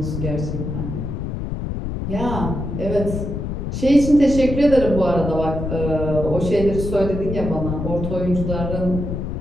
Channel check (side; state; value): left; noise; rumble, 4 dB below the sound